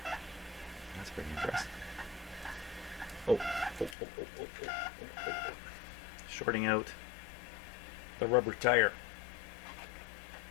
That's pretty interesting. Oh. Shorting out the rubber tire.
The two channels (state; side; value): drops out; right; at 4.0 s